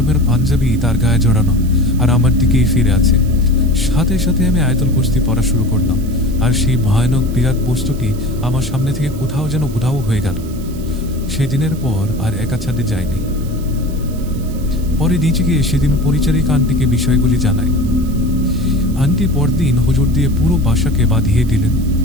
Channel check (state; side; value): noise; right; hiss, 21 dB below the sound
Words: পাঞ্জাবি তার গায়ে জড়ানো, আর আমার দিকেই ফিরে আছে। সাথে সাথে আমি আয়তল কুস্তি পড়া শুরু করলাম, আর সেই ভয়ানক বিরাট বস্তুটি আমার সামনে থেকে কোথাও যেন উধাও হয়ে গেল। সেদিনের পর আর একা ছাদে যায়নি। পরে নিচে গিয়ে সেদিন পরিচারিকা আন্টিকে বিষয়গুলি জানাই। আন্টি পরদিন হুজুর দিয়ে পুরো বাসাকে বাঁধিয়ে দিলেন।